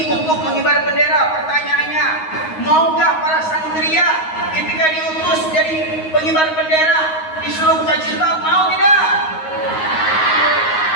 untuk mengibar bendera. Pertanyaannya, maukah para santria ketika diutus jadi pengibar bendera disuruh buka jilbab? Mau tidak?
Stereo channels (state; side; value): late; right; 9.5 ms